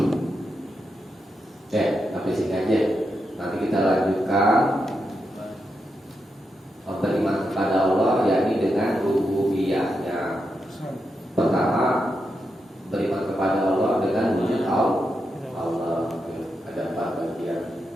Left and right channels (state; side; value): normal; both; correlation 0.85